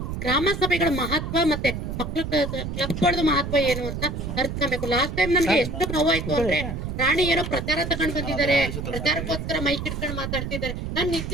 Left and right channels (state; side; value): noise; right; rumble, 5 dB below the sound